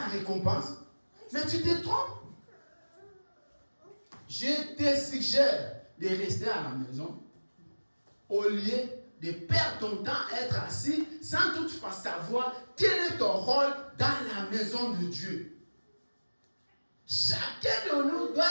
récompense. Mais tu te trompes. Je te suggère de rester à la maison au lieu de perdre ton temps à être assis sans toutefois savoir quel est ton rôle dans la maison de Dieu. Chacun de nous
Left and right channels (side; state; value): both; inverted; correlation -1.00